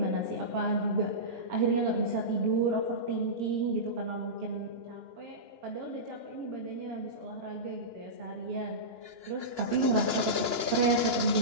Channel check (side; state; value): left; late; 2.9 ms